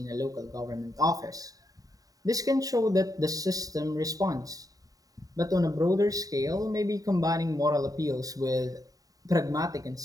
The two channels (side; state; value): left; late; 0.18 ms